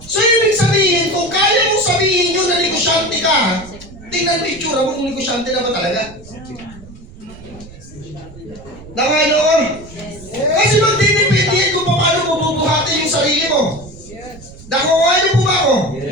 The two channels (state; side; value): noise; right; rumble, 19 dB below the sound